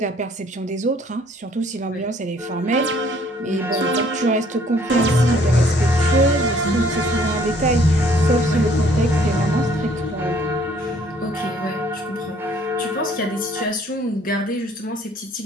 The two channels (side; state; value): both; normal; correlation 0.60